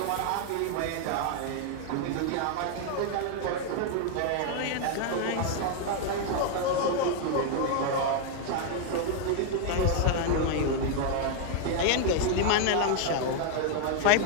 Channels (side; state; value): both; different; correlation 0.00